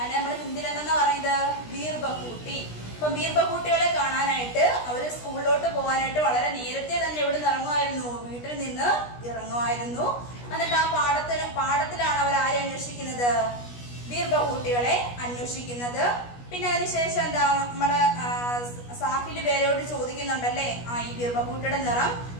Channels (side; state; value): right; late; 17 ms